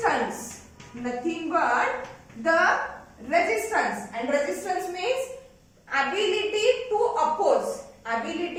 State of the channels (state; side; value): identical; both; correlation 1.00